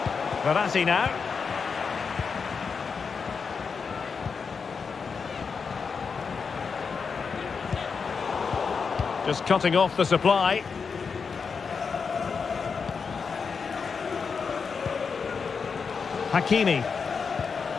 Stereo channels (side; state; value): right; quieter; 5.6 dB